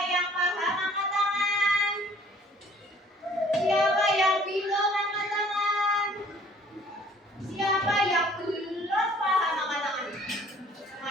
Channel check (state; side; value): normal; both; correlation 0.55